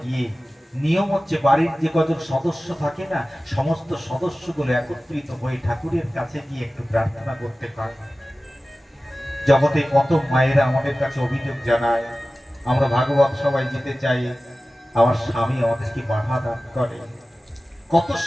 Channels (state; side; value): normal; both; correlation 0.96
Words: গিয়ে নিয়ম হচ্ছে বাড়ির যে কজন সদস্য থাকে না, সমস্ত সদস্যগুলো একত্রিত হয়ে ঠাকুরের কাছে গিয়ে একটু প্রার্থনা করতে পারে। জগতে কত মায়েরা আমাদের কাছে অভিযোগ জানায়, আমরা ভাগবত সবাই যেতে চাই, আমার স্বামী আমাদেরকে বাধা দান করে। কত